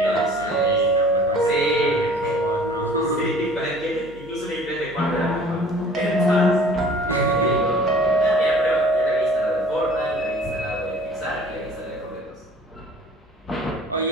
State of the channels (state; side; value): normal; both; correlation 0.49